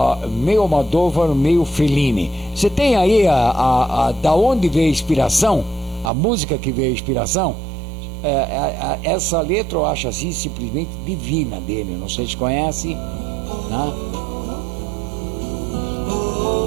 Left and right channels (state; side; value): drops out; left; at 6.1 s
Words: meio Fellini. Você tem aí da onde veio a inspiração, a música que veio a inspiração? Essa letra eu acho assim simplesmente divina dele, não sei se conhece, né?